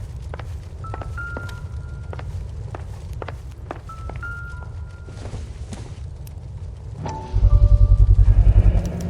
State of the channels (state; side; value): identical; both; correlation 1.00